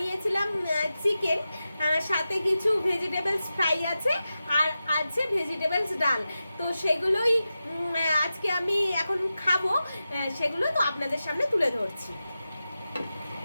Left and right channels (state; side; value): inverted; both; correlation -0.92